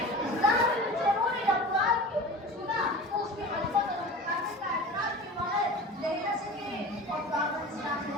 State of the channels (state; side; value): normal; both; correlation 0.36